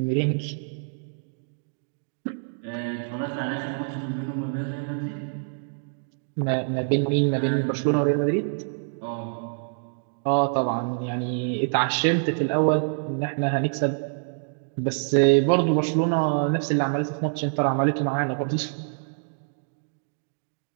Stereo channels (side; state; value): left; silent; digital silence